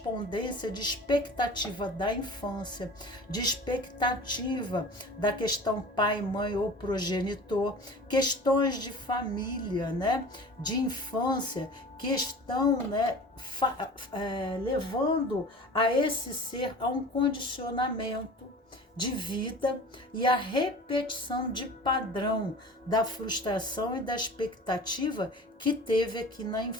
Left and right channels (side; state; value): both; normal; correlation 0.40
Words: de expectativa da infância, de expectativa da questão pai, mãe ou progenitor, questões de família, né? De infância, que estão, né, levando a esse ser a um condicionamento de vida e a repetição de padrão da frustração e da expectativa que teve aqui na